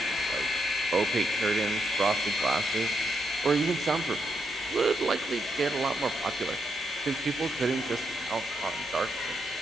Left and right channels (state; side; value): normal; both; correlation 0.81